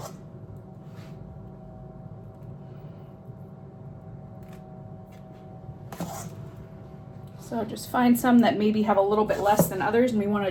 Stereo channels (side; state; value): both; identical; correlation 1.00